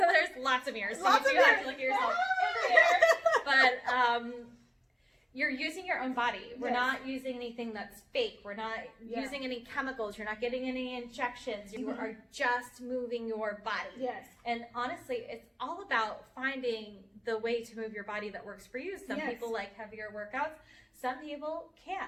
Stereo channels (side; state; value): both; identical; correlation 1.00